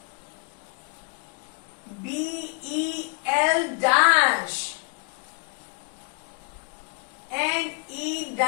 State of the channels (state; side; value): quieter; right; 38.4 dB